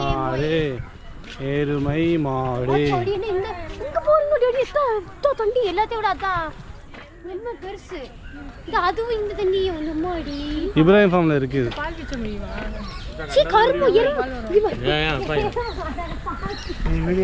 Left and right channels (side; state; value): both; identical; correlation 1.00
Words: மாடு எருமை மாடு இங்க போறீங்க டேடி தண்ணி எல்லாத்தையும் விட அதான் ரொம்ப பெருசு இது அதுவும் இந்த தண்ணி வந்து மாடி இப்ராஹிம் ஃபார்ம்ல இருக்குது. பால் கிச்ச முடியுமா? சீ கரும்பு எருமை